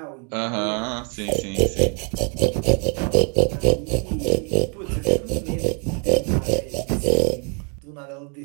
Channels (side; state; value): left; quieter; 37.6 dB